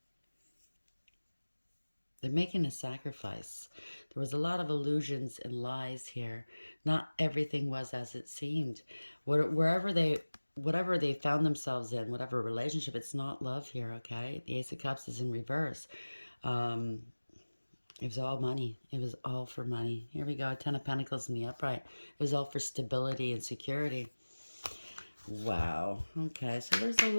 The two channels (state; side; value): inverted; both; correlation -1.00